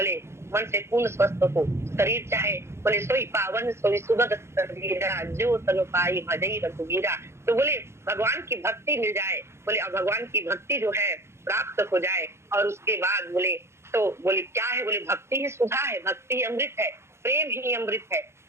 मन से पूर्ण स्वस्थ हो, शरीर चाहे, बोले सोई पावन सोई सुगत शरीरा, जो तनु पाई भजई रघुवीरा। तो बोले भगवान की भक्ति मिल जाए, बोले अब भगवान की भक्ति जो है प्राप्त हो जाए, और उसके बाद बोले तो बोले क्या है? बोले भक्ति ही सुधा है, भक्ति ही अमृत है, प्रेम ही अमृत है।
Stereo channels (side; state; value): left; late; 0.13 ms